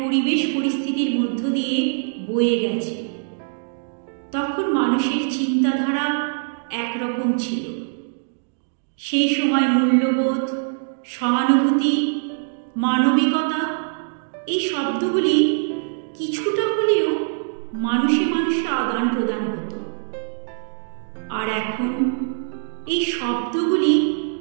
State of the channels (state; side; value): silent; left; digital silence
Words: পরিস্থিতির মধ্য দিয়ে বয়ে গেছে। তখন মানুষের চিন্তাধারা একরকম ছিল। সেই সময় মূল্যবোধ, সহানুভূতি, মানবিকতা এই শব্দগুলি কিছুটা হলেও মানুষে মানুষে আদান প্রদান হতো। আর এখন এই শব্দগুলি